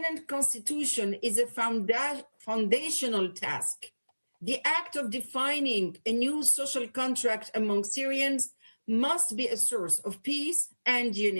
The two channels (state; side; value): inverted; both; correlation -1.00